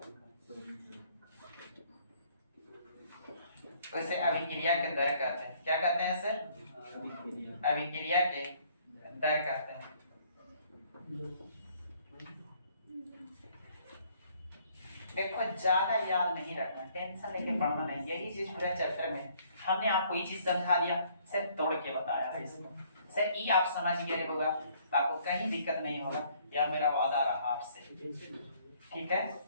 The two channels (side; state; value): both; inverted; correlation -0.62